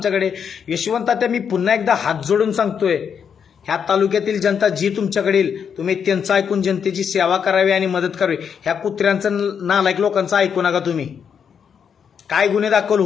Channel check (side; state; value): right; quieter; 7.3 dB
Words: यशवंत तात्या, मी पुन्हा एकदा हात जोडून सांगतोय, ह्या तालुक्यातील जनता जी तुमच्याकडे येईल, तुम्ही त्यांचं ऐकून जनतेची सेवा करावी आणि मदत करावी. ह्या कुत्र्यांचं नालायक लोकांचं ऐकू नका. तुम्ही काय गुन्हे दाखल